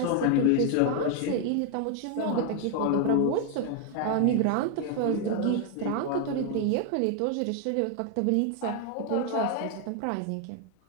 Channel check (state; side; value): different; both; correlation 0.00